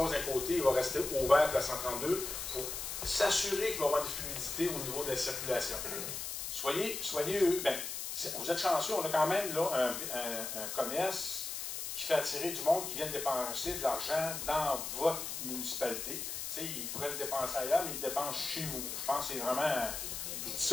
d'un côté, il va rester ouvert pour la 132 pour s'assurer qu'il va y avoir une fluidité au niveau de la circulation. Soyez ben, vous êtes chanceux, on a quand même là, un commerce qui fait attirer du monde qui vient dépenser de l'argent dans votre municipalité. Tu sais, ils pourraient le dépenser ailleurs, mais ils le dépensent chez vous. Je pense que c'est vraiment... Je dis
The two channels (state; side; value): noise; left; hiss, 5 dB below the sound